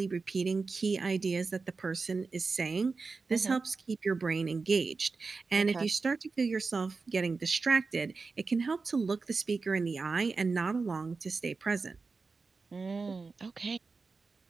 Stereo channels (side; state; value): left; quieter; 4.3 dB